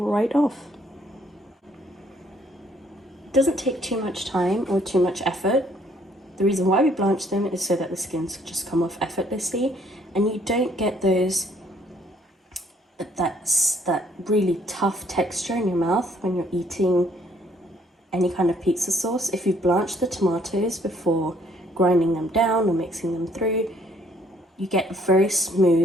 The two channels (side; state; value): both; normal; correlation 0.64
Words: off. It doesn't take too much time or too much effort. The reason why we blanch them is so that the skins just come off effortlessly and you don't get that really tough texture in your mouth when you're eating any kind of pizza sauce. If you blanch the tomatoes before grinding them down or mixing them through, you get a very